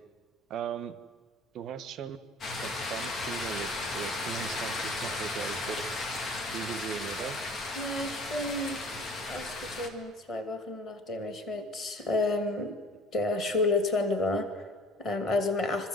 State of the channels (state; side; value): normal; both; correlation 0.47